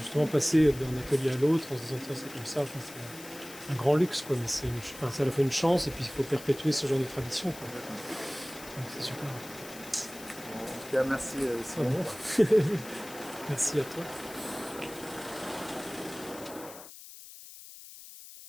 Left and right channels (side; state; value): left; noise; hiss, 15 dB below the sound